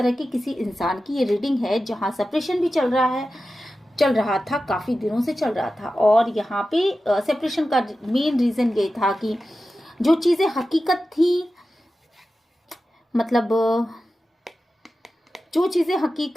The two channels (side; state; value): both; normal; correlation 0.93